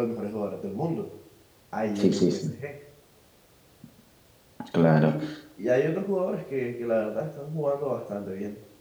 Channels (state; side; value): identical; both; correlation 1.00